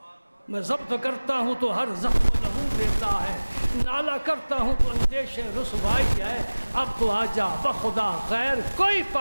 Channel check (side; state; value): both; inverted; correlation -1.00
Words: میں ضبط کرتا ہوں تو ہر زخم لہو دیتا ہے، نالا کرتا ہوں تو اندیش رسوائی ہے، اب تو آجا بخدا غیر کوئی